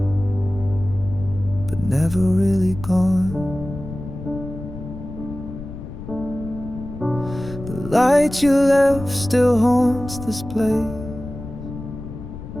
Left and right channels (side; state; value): left; noise; rumble, 11 dB below the sound